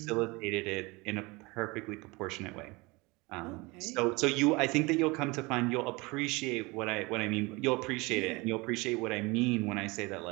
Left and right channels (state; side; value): quieter; left; 24.8 dB